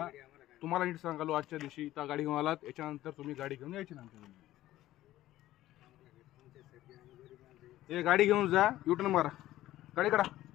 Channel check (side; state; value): right; quieter; 14.8 dB